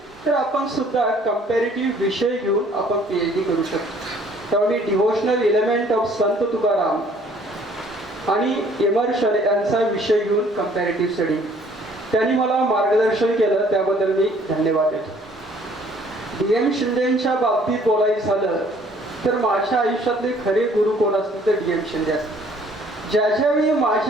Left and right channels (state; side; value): normal; both; correlation 0.59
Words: तर आपण सुद्धा कंपॅरेटिव्ह विषय घेऊन आपण PhD करू शकतो. तेव्हा मी डिव्होशनल एलिमेंट ऑफ संत तुकाराम आणि इमर्शन यांचा विषय घेऊन कंपॅरेटिव्ह स्टडी, त्यांनी मला मार्गदर्शन केलं, त्याबद्दल मी धन्यवाद देतो. DM शिंदेच्या बाबतीत बोलायचं झालं तर माझ्या आयुष्यातले खरे गुरु कोण असतील तर DM शिंदे असतील. ज्यावेळी